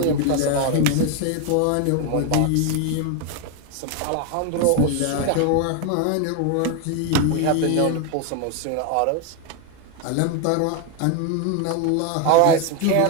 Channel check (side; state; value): both; different; correlation 0.01